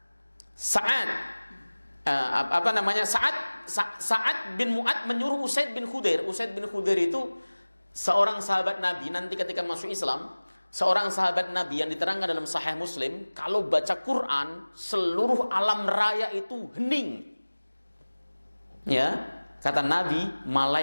Sa'ad Sa'ad bin Mu'ad menyuruh Usaid bin Khudair. Usaid bin Khudair itu seorang sahabat Nabi. Nanti ketika masuk Islam, seorang sahabat Nabi yang diterangkan dalam Sahih Muslim, kalau baca Quran seluruh alam raya itu hening. Ya, kata Nabi,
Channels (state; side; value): inverted; both; correlation -1.00